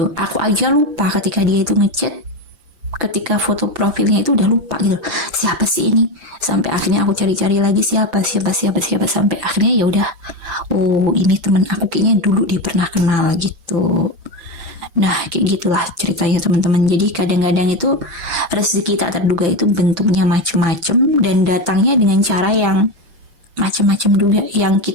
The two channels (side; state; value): left; late; 5.9 ms